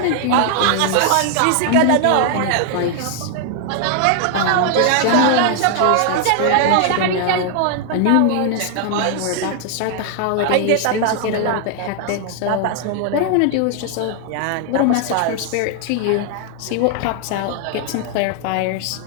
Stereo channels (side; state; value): both; different; correlation 0.00